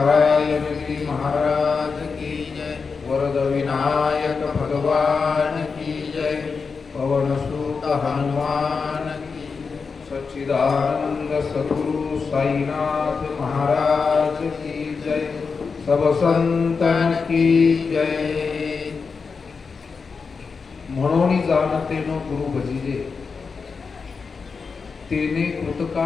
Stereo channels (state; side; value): quieter; right; 5.1 dB